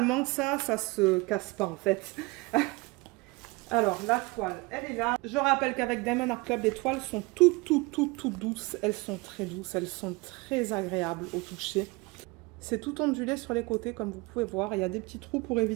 ça se casse pas en fait. Alors, la toile, elle est là. Je rappelle qu'avec Diamond Art Club, les toiles sont toutes douces. Elles sont très douces, elles sont très agréables au toucher. C'est tout ondulé sur les côtés, comme vous pouvez voir. Il y a des petits trous pour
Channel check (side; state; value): left; quieter; 24.6 dB